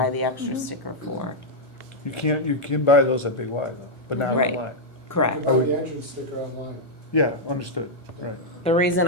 the extra sticker for. You can buy those at Big Y though, but not Right. online. Correct. You can buy the entrance sticker online. Yeah, understood, right. The reason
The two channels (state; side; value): normal; both; correlation -0.03